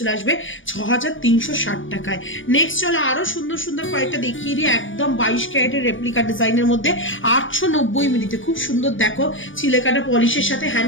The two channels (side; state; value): right; late; 0.57 ms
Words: আসবে 6360 টাকায়। নেক্সট চলো আরো সুন্দর কয়েকটা দেখিয়ে দিই, একদম 22 ক্যারেটের রেপ্লিকা ডিজাইনের মধ্যে 890 মিনিটে খুব সুন্দর দেখো চিলেকাটা পলিশের সাথে